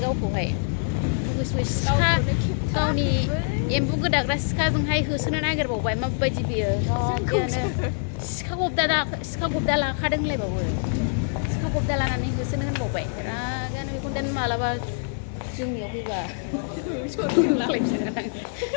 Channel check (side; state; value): right; silent; digital silence